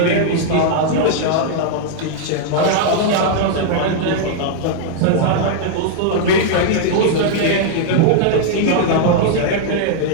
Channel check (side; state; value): both; different; correlation -0.01